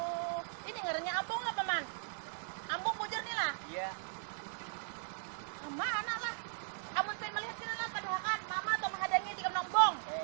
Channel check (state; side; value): silent; left; 52 dB below the other